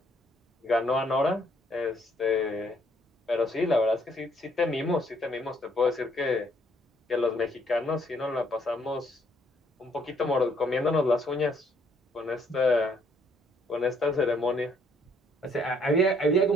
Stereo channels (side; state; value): both; normal; correlation 0.67